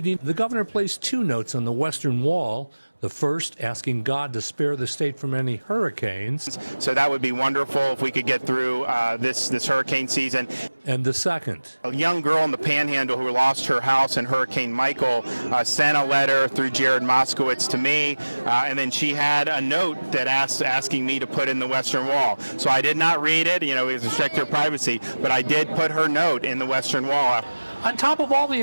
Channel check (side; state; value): both; inverted; correlation -1.00